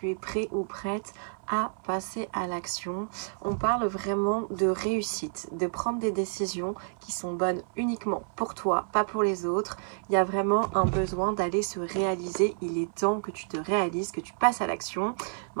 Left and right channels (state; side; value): silent; left; 58 dB below the other